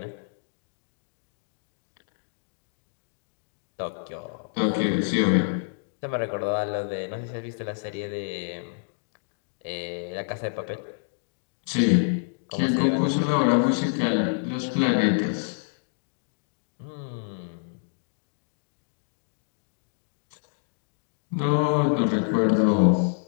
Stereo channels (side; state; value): right; silent; digital silence